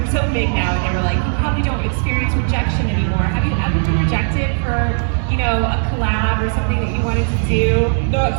so big now, and they were like, you probably don't experience rejection anymore. Have you ever been rejected for, a collab or something that you wanted to do? No, it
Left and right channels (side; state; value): left; silent; 60 dB below the other